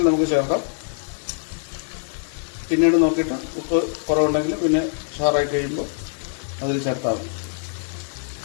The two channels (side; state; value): right; silent; digital silence